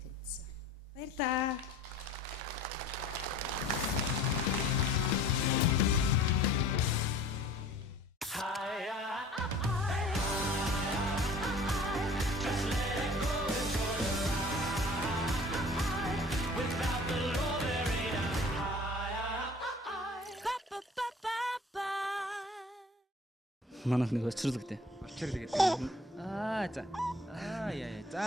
Баярлаа. Манайх нэг очирлогтэй. Очирлог гэдэг. За. Яа.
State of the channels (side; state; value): both; normal; correlation 0.48